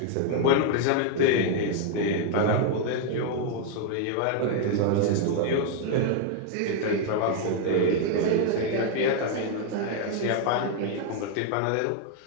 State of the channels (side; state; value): both; different; correlation 0.00